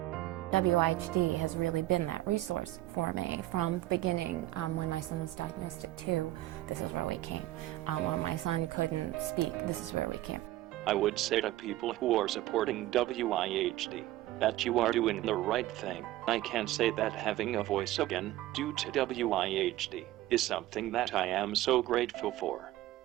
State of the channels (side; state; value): left; quieter; 15.6 dB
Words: Wihd has really been that resource for me from the beginning. When my son was diagnosed at 2, this is where we came. When my son couldn't speak, this is where we came. I would say to people who are supporting Wihd that you are doing the right thing. I can say that having a voice again, due to Wihd, is something that I am so grateful for.